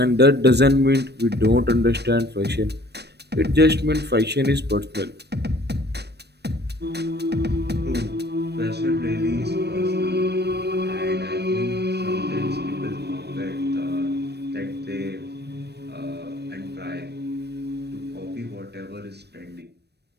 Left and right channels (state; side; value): late; left; 0.48 ms